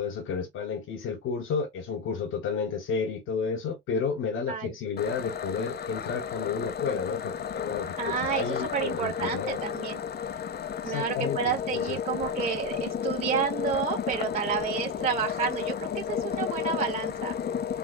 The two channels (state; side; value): normal; both; correlation 0.10